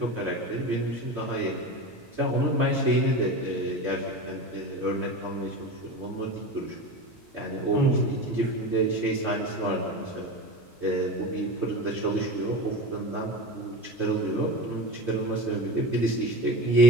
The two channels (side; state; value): both; normal; correlation 0.27